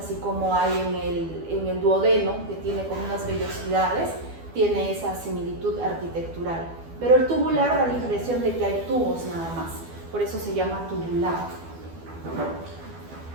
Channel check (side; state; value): left; late; 12 ms